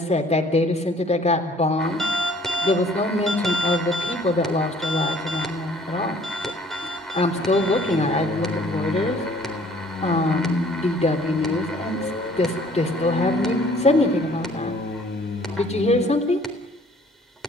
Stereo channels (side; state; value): both; normal; correlation 0.56